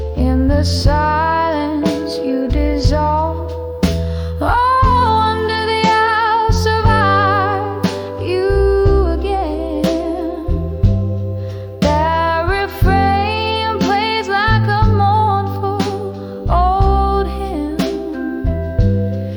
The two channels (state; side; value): identical; both; correlation 1.00